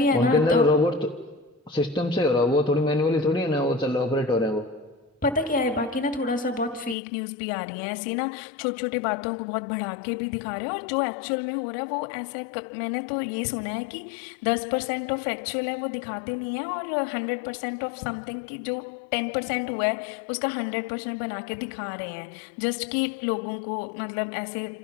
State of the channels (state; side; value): drops out; right; at 7.0 s